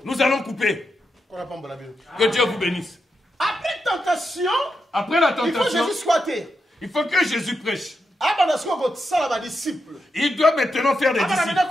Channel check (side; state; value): both; normal; correlation 0.85